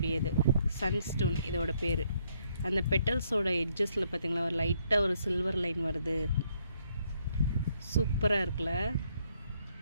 சன்ஸ்டோன் இதோட பேர். அந்த பெட்டல்ஸோட எட்ஜஸில் பார்த்திங்களா ஒரு லைட்டாக ஒரு சில்வர் லைன் வருது. சூப்பராக இருக்குல்ல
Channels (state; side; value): inverted; both; correlation -0.71